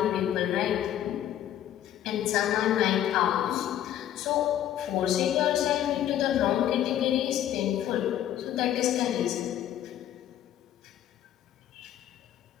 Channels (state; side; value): quieter; right; 11.4 dB